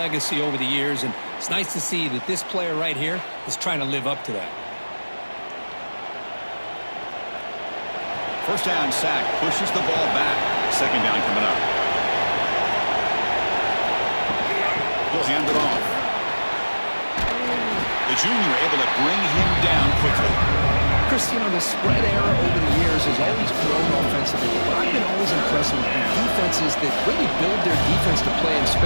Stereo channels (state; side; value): inverted; both; correlation -1.00